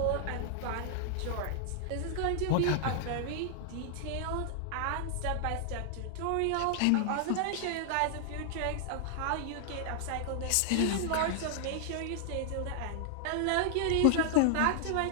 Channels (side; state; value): both; different; correlation 0.00